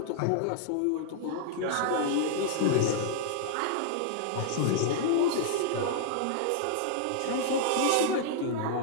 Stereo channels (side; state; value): both; different; correlation -0.01